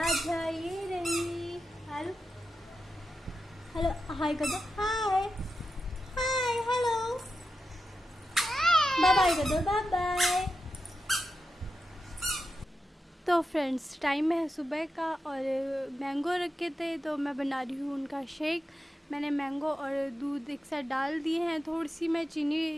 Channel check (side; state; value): both; normal; correlation 0.89